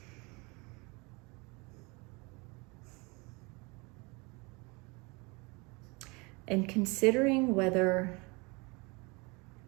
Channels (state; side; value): quieter; left; 27.9 dB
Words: And considering whether